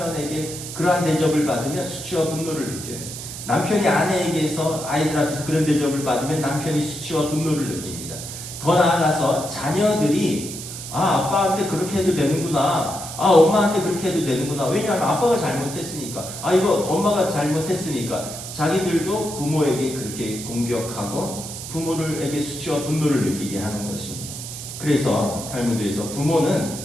그러한 대접을 받으면 수치와 분노를 느껴요. 남편이 아내에게서 아이들 앞에서 그런 대접을 받으면 남편이 수치와 분노를 느낍니다. 더 나아가서 자녀들이 아빠한테 그렇게 해도 되는구나, 엄마한테 그렇게 해도 되는구나, 왜냐하면 아빠가 잘못했으니까, 이거 엄마가 잘못했으니까 자기들도 부모에게 그렇게 공격하고 부모에게 수치와 분노를 느끼게 하는 것입니다. 그래서 탈무드에서 부모는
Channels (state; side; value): noise; right; hiss, 9 dB below the sound